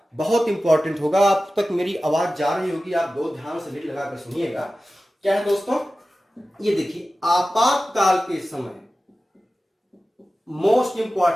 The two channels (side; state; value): both; normal; correlation 0.95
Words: बहुत इंपॉर्टेंट होगा। आप तक मेरी आवाज जा रही होगी, आप दो ध्यान से लीड लगाकर सुनिएगा। क्या है दोस्तों, ये देखिए, आपातकाल के समय, मोस्ट